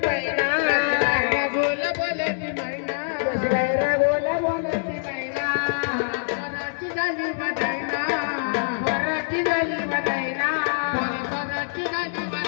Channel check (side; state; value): right; silent; digital silence